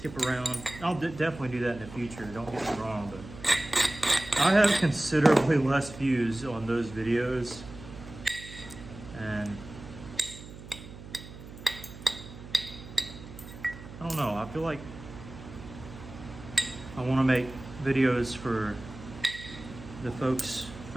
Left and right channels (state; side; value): noise; right; hum, 15 dB below the sound